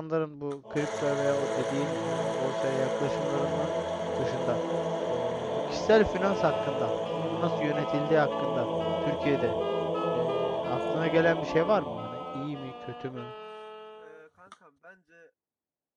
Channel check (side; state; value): both; identical; correlation 1.00